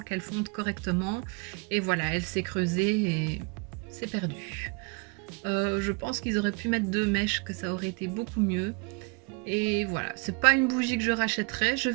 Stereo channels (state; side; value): quieter; left; 31.6 dB